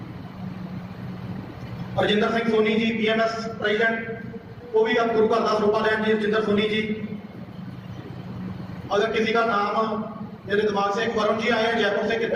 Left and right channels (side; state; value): both; identical; correlation 1.00